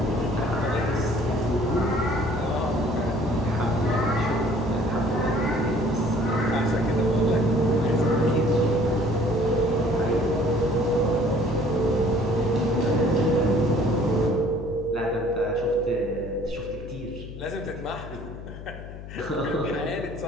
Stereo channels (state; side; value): noise; left; hum, 12 dB below the sound